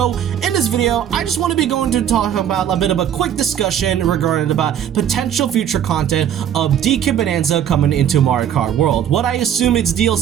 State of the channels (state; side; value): quieter; left; 9.7 dB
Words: in this video, I just want to be going to talk about a bit of a quick discussion regarding about potential future content of DK Bananza coming into Mario Kart World. What I assume it's